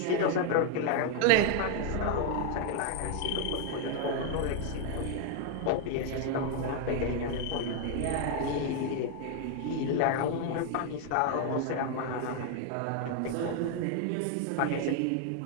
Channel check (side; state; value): both; different; correlation 0.00